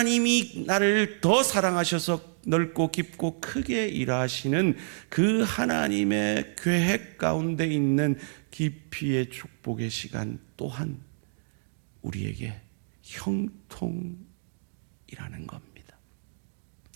나를 더 사랑하셔서 넓고 깊고 크게 일하시는 그 하나님의 계획 가운데 있는 깊이의 축복의 시간 또한 우리에게 형통이라는 겁니다.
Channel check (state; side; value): silent; left; digital silence